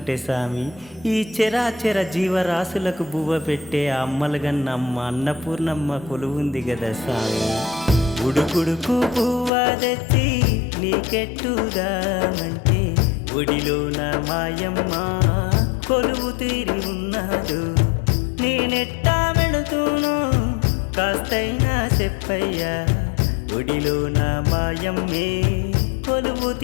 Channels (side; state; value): right; drops out; at 9.5 s